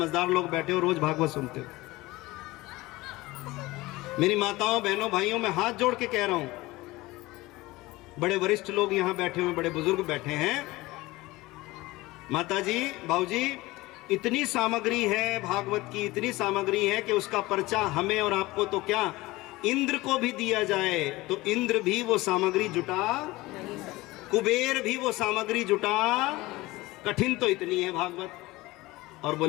लोग बैठे हो, रोज भागवत सुनते हो। मेरी माताओं बहनों भाइयों, मैं हाथ जोड़ के कह रहा हूं, बड़े वरिष्ठ लोग यहां बैठे हुए, बड़े बुजुर्ग बैठे हैं। माताजी बाबूजी, इतनी सामग्री है भागवत की, इतनी सामग्री है कि उसका पर्चा हमें और आपको तो क्या, इंद्र को भी दिया जाए तो इंद्र भी वो सामग्री जुटा, कुबेर भी वो सामग्री जुटा। कठिन तो इतनी है भागवत। और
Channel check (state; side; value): quieter; right; 20.0 dB